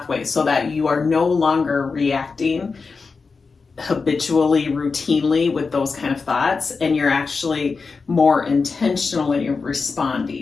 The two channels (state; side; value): quieter; right; 4.6 dB